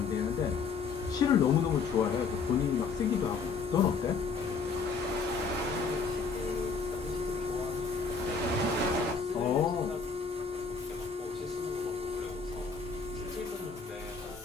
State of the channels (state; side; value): quieter; right; 5.0 dB